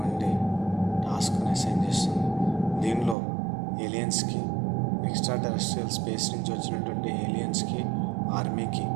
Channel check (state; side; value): drops out; left; at 3.2 s